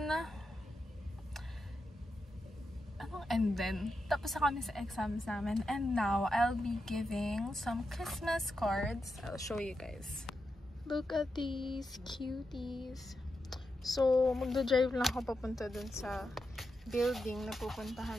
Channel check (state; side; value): normal; both; correlation 0.87